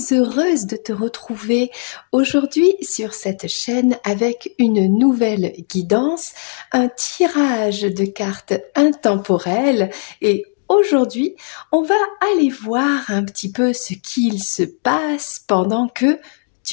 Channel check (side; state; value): right; silent; digital silence